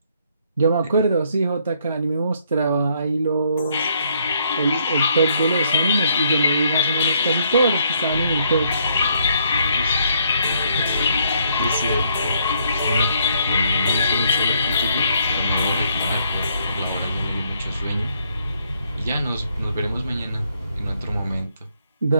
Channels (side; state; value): both; inverted; correlation -0.70